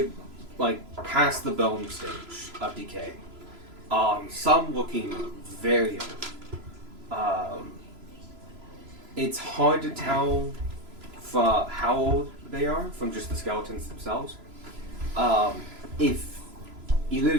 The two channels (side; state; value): left; late; 3.0 ms